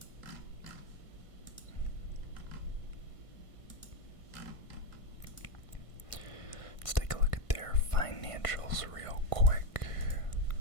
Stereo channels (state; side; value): late; right; 1.5 ms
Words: Let's take a look at their financials real quick.